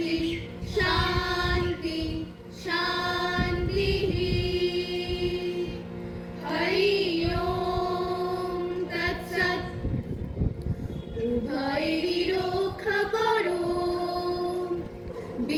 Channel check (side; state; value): both; identical; correlation 1.00